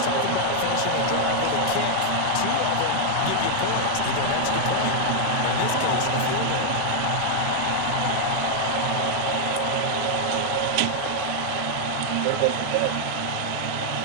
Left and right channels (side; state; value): both; different; correlation 0.00